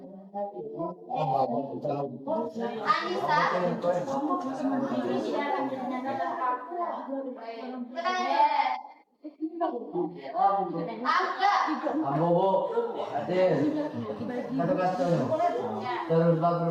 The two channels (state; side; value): identical; both; correlation 1.00